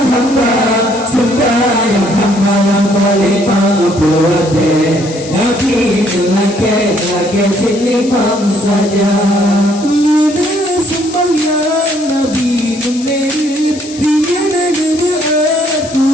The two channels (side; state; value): left; noise; hiss, 15 dB below the sound